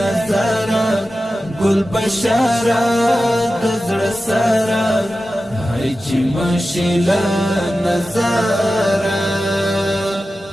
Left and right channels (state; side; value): normal; both; correlation 0.93